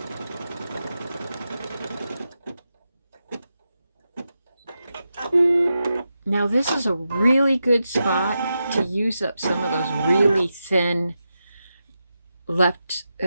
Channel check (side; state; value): both; inverted; correlation -0.89